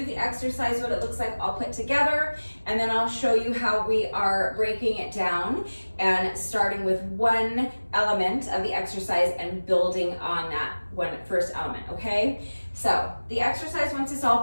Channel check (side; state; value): both; inverted; correlation -1.00